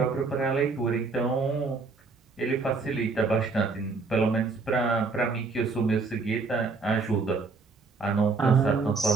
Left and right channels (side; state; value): left; quieter; 4.3 dB